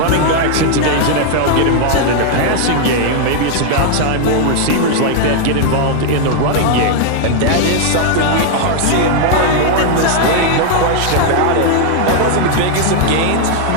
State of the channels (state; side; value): different; both; correlation 0.00